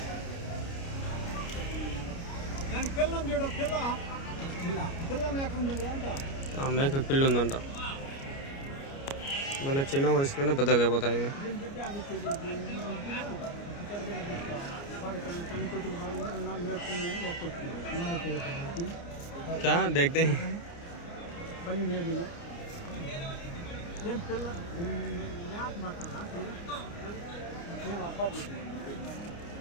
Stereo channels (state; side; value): late; right; 29 ms